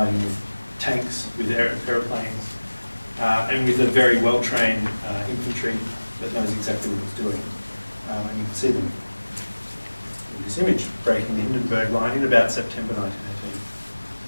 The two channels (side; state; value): both; inverted; correlation -1.00